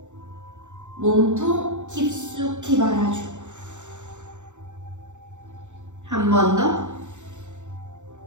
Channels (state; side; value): late; left; 0.84 ms